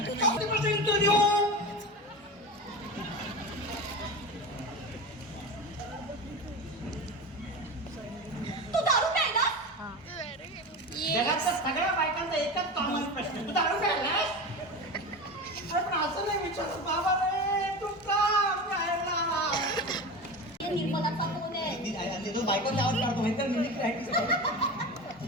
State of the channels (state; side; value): normal; both; correlation 0.27